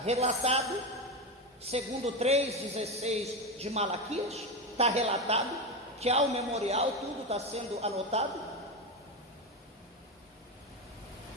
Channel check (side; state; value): both; normal; correlation 0.16